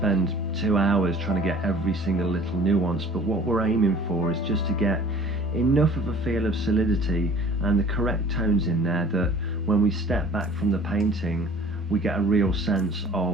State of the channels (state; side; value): normal; both; correlation 0.49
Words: 2 hours trying to get every single little nuance, but what we're aiming for is just to get enough of a feel of solidity and the correct tones in there that when we step back from the painting we get a real sense